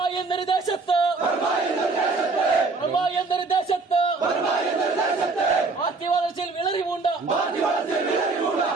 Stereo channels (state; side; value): quieter; left; 3.9 dB